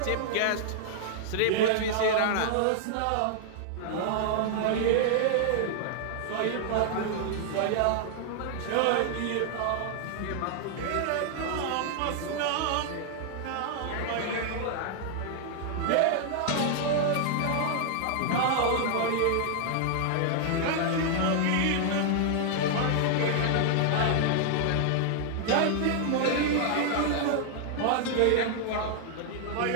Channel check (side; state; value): both; different; correlation 0.00